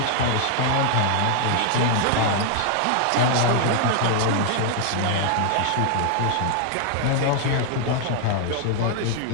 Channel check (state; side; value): different; both; correlation 0.00